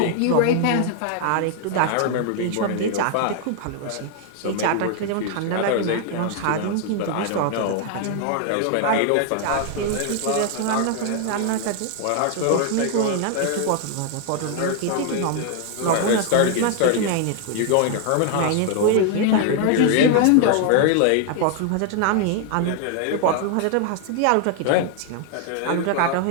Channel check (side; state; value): both; different; correlation 0.00